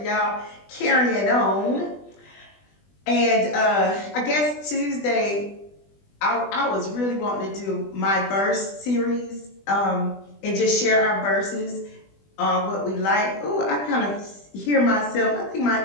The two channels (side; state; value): right; late; 20 ms